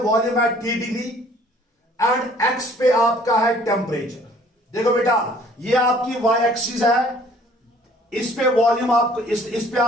volume at T degree and x पे आपका है टेम्परेचर। देखो बेटा ये आपकी y एक्सिस है, इस पे वॉल्यूम आपको इस पे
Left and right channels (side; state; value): both; normal; correlation 0.56